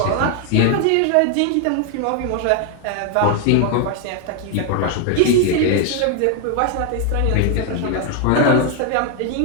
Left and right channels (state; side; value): different; both; correlation 0.01